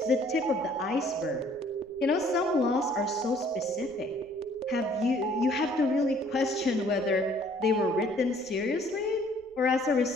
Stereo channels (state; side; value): noise; right; rumble, 29 dB below the sound